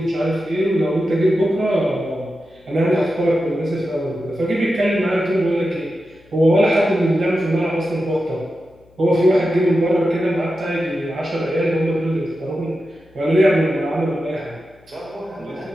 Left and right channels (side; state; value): left; noise; hum, 30 dB below the sound